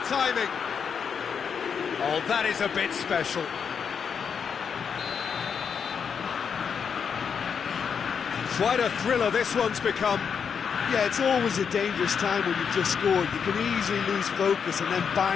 timing! Oh, that is a bit special. Quite a thriller this one's become. Yeah, it's always a dangerous time when you've just scored. You can easily lose focus and then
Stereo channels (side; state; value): right; quieter; 6.7 dB